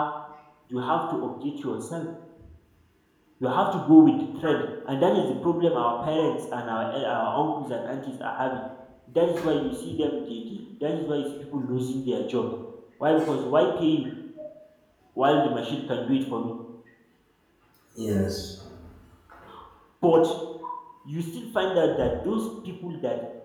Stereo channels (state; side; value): identical; both; correlation 1.00